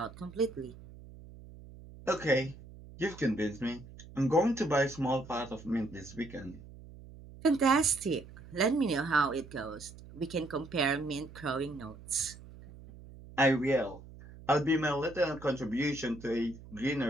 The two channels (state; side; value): noise; right; hum, 18 dB below the sound